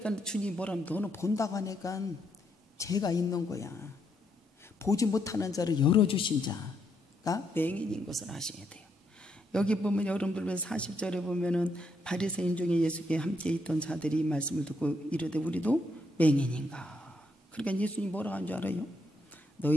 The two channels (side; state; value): both; normal; correlation 0.77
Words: 주님 뭐라면 너는 본다고 하니까 죄가 있는 거야. 보지 못하는 자를 열어주신 자가 맹인인 것을 아셔야 돼요. 여기 보면 여러분들 40절에 보면은 바리새인 중에 예수께 함께 있던 자들이 이 말씀을 듣고 이르되 우리도 맹인인가. 그러니까 예수님 뭐라고 한 줄 알아요?